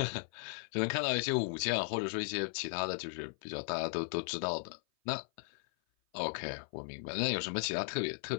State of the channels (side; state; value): right; silent; 53 dB below the other